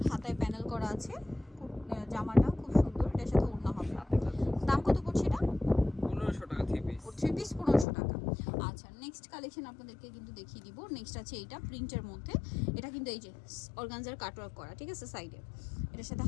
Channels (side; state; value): right; drops out; at 7.9 s